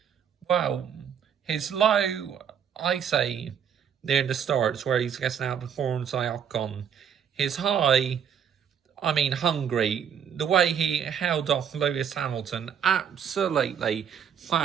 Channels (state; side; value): quieter; left; 8.0 dB